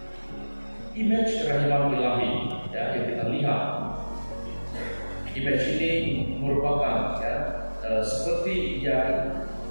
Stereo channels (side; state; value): both; inverted; correlation -1.00